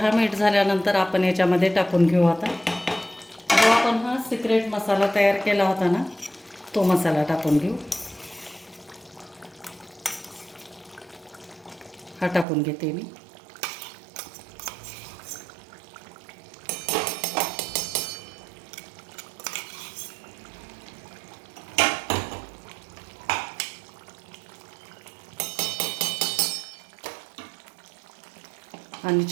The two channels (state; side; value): drops out; left; at 12.5 s